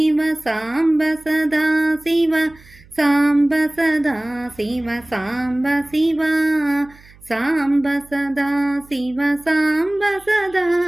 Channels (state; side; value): noise; right; hum, 25 dB below the sound